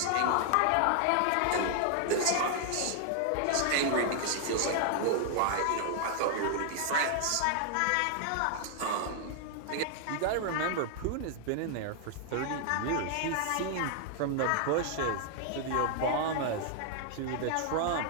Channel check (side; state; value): both; different; correlation 0.00